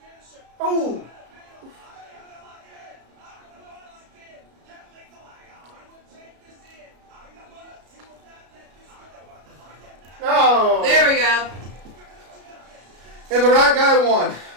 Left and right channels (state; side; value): late; left; 33 ms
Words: Oh! No! There we go. And the right guy won.